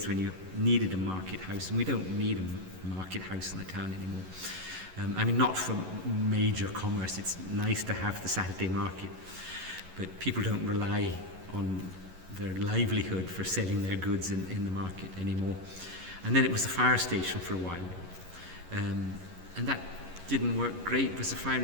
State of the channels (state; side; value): late; left; 11 ms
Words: when you needed a market house, and we don't need a market house in the town anymore. Not for major commerce. It's nice to have the Saturday market, but people don't rely on their livelihood for selling their goods in the market anymore. And then it was the fire station for a while, and that didn't work great because the fire